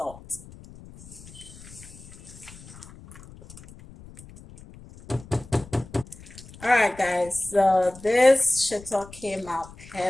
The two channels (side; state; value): left; noise; rumble, 19 dB below the sound